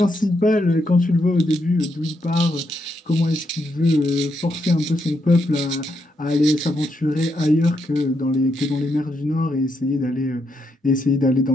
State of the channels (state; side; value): normal; both; correlation 0.80